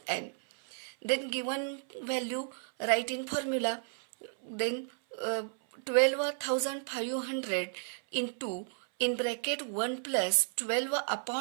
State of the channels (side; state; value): left; silent; 56 dB below the other